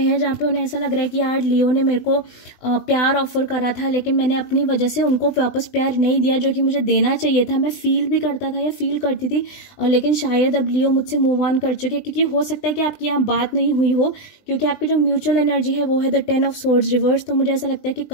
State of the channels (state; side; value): late; right; 20 ms